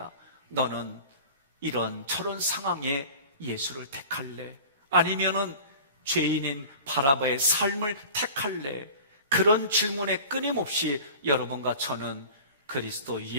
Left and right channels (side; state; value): both; inverted; correlation -0.40